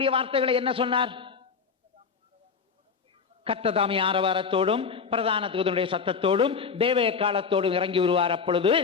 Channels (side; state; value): right; quieter; 5.7 dB